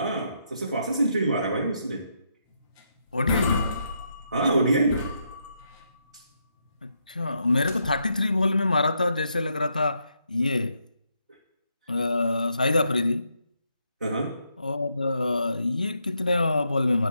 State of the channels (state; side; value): inverted; both; correlation -0.79